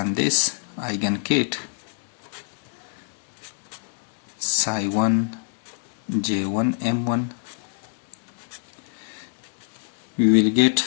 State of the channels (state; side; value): silent; right; 61 dB below the other